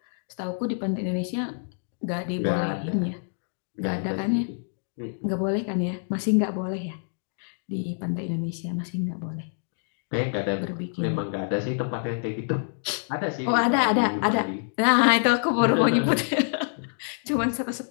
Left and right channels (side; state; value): right; silent; digital silence